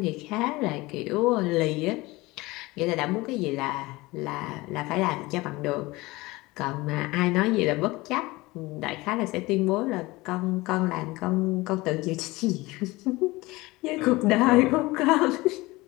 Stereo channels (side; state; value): right; quieter; 21.2 dB